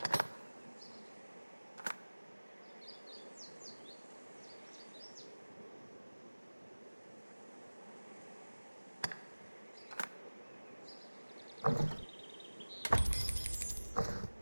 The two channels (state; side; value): inverted; both; correlation -1.00